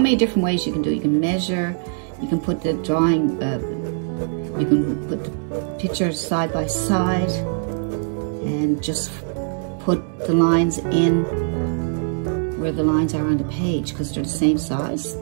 different ways you can do it. You can measure, you can put the drawing, you can put the pictures side by side and just put the lines in where the lines are on the page, because they're the same size.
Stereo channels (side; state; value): left; silent; digital silence